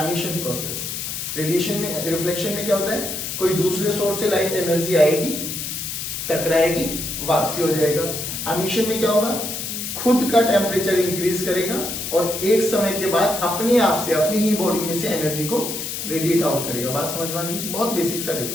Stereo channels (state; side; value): noise; left; hiss, 5 dB below the sound